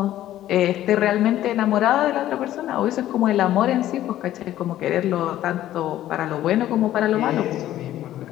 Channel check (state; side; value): quieter; right; 13.2 dB